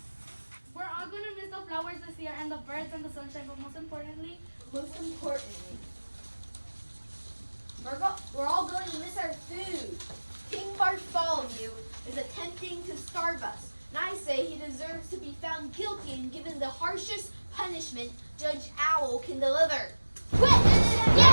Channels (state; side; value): inverted; both; correlation -1.00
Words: We're all going to miss the flowers this year and the birds and the sunshine, but most importantly, We're all going to miss our food. King Bartholomew is attempting to starve us, and I say he deserves to be found guilty and given the harshest punishment Judge Owl can deliver. I